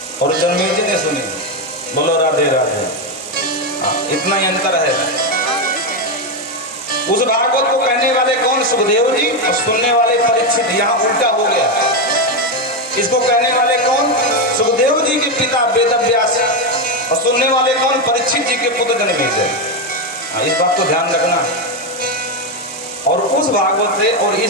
और जन्मेजय ने सुनी। बोलो राधे राधे। इतना ही अंतर है। उस भागवत को कहने वाले कौन? सुखदेव जी, और सुनने वाले परीक्षित। यहाँ उल्टा हो गया। इसको कहने वाले कौन? सुखदेव जी के पिता वेदव्यास, और सुनने वाले कौन? परीक्षित जी के पुत्र जन्मेजय। इस बात को ध्यान रखना। और उस भागवत से और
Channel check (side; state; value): both; normal; correlation 0.08